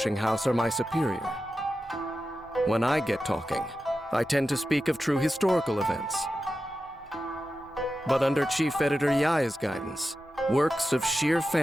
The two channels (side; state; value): both; normal; correlation 0.92